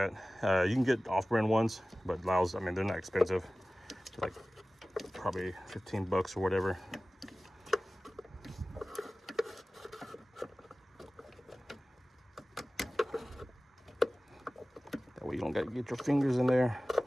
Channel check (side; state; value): both; normal; correlation 0.97